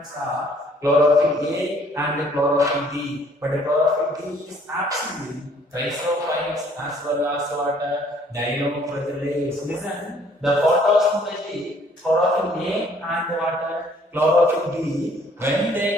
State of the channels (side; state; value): both; normal; correlation 0.60